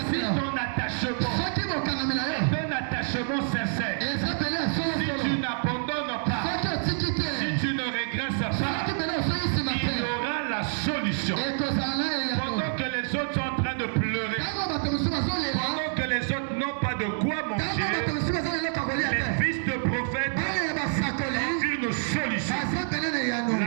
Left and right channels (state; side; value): silent; left; digital silence